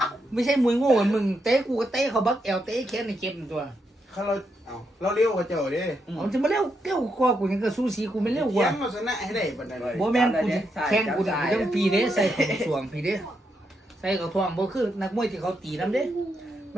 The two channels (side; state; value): both; normal; correlation 0.81